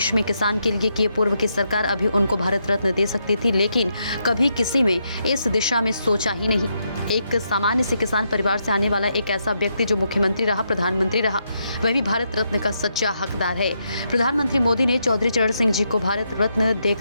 में किसान के लिए किए। पूर्व की सरकार अभी उनको भारत रत्न दे सकती थी, लेकिन कभी किसी में इस दिशा में सोचा ही नहीं। एक सामान्य से किसान परिवार से आने वाला एक ऐसा व्यक्ति जो मुख्यमंत्री रहा, प्रधानमंत्री रहा, वह भी भारत रत्न का सच्चा हकदार है। प्रधानमंत्री मोदी ने चौधरी चरण सिंह जी को भारत रत्न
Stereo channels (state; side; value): inverted; both; correlation -0.80